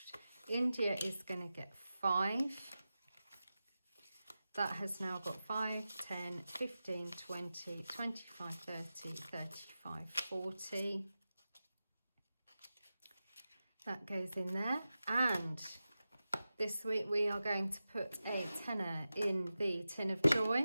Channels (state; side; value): inverted; both; correlation -0.94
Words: India is going to get 5. That has now got 5, 10, 15, 20, 25, 30, 35, 40. That goes in there. And this week we are going to put a tenner in the tin of